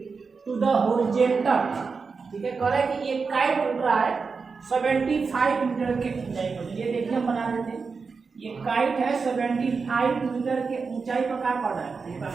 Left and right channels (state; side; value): quieter; left; 4.9 dB